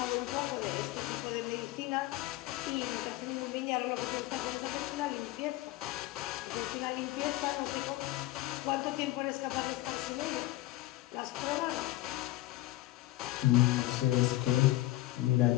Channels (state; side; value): quieter; right; 17.6 dB